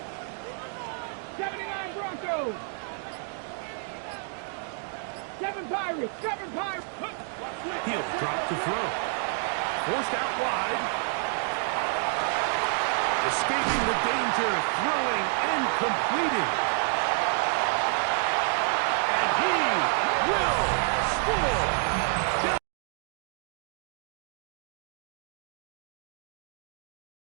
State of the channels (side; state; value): left; silent; 56 dB below the other